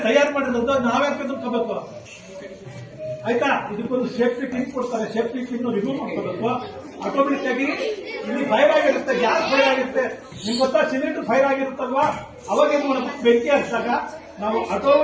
ತಯಾರು ಮಾಡಿರೋದು, ನಾವೇ ತಿಳ್ಕೋಬೇಕು. ಆಯ್ತಾ? ಇದಕ್ಕೊಂದು ಸೇಫ್ಟಿ ಪಿನ್ ಕೊಡ್ತಾರೆ, ಸೇಫ್ಟಿ ಪಿನ್ ರಿಮೂವ್ ಮಾಡ್ಕೋಬೇಕು. ಆಟೋಮೆಟಿಕ್ ಆಗಿ ಇಲ್ಲಿ ಫೈರ್ ಆಗಿರುತ್ತೆ, ಗ್ಯಾಸ್ ಫೈರ್ ಆಗಿರುತ್ತೆ. ನಿಮ್ಗೆ ಗೊತ್ತಾ, ಸಿಲಿಂಡರ್ ಫೈರ್ ಆಗಿರುತ್ತಲ್ವಾ, ಅವಾಗ ಏನ್ ಮಾಡಬೇಕು, ಬೆಂಕಿ ಹಚ್ಚಿದಾಗ ನಾವು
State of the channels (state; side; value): identical; both; correlation 1.00